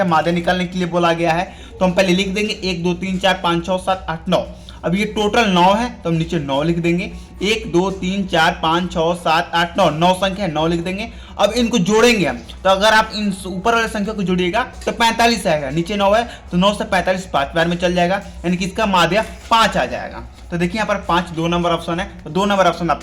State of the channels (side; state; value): both; identical; correlation 1.00